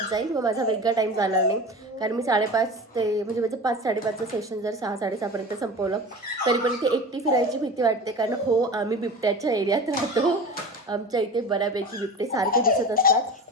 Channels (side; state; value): both; normal; correlation 0.33